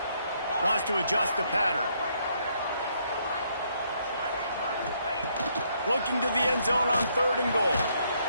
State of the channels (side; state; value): both; inverted; correlation -0.71